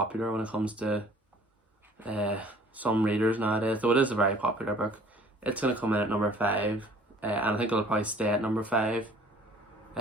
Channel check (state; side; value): normal; both; correlation 0.53